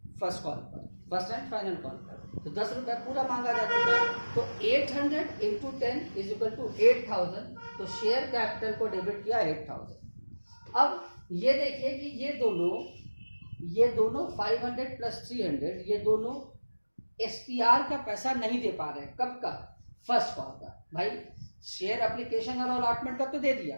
फर्स्ट कॉल पर, फर्स्ट एंड फाइनल कॉल पर, तो 10 रुपए पूरा मांगा जा चुका है। तो 800 इंटू 10 इज इक्वल टू 8000, तो शेयर कैपिटल को डेबिट किया 8000। अब ये देखिए कि ये दोनों 500 प्लस 300 ये दोनों एसपीआर का पैसा नहीं दे पा रहे हैं। कब का, फर्स्ट कॉल का। भाई शेयर एप्लीकेशन और अलॉटमेंट का तो दे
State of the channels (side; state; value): both; inverted; correlation -1.00